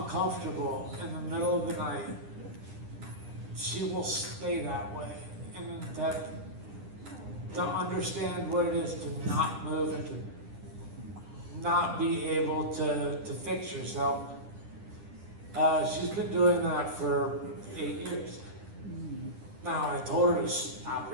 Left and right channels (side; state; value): left; late; 9.9 ms